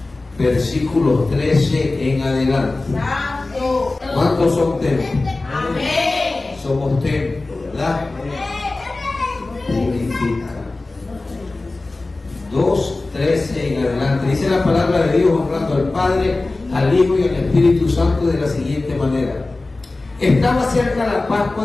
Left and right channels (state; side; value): quieter; right; 3.2 dB